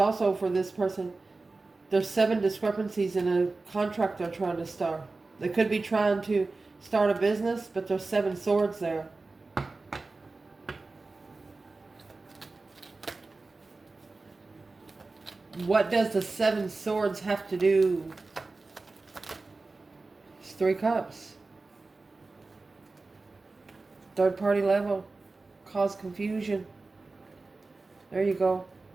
for this person. There's 7 discrepancies in a contract they're trying to start. They could be trying to start a business, but there's 7 swords there. What does the 7 swords have to do? It's 3 cups. Third party level. Cause confusion. There you go.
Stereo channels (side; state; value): left; quieter; 3.6 dB